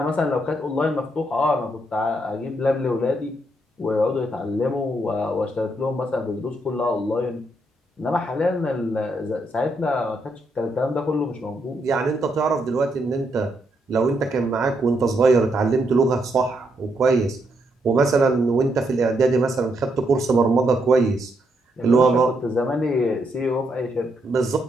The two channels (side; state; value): both; normal; correlation 0.78